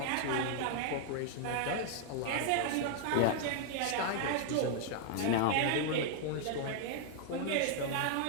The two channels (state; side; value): different; both; correlation 0.00